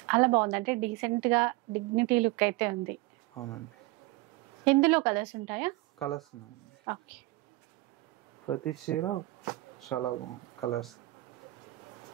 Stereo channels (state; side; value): quieter; left; 20.0 dB